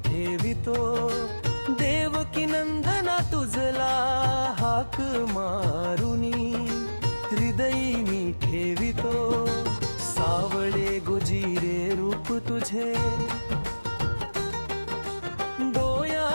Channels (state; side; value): inverted; both; correlation -1.00